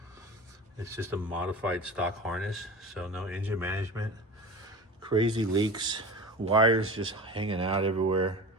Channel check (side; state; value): both; normal; correlation 0.34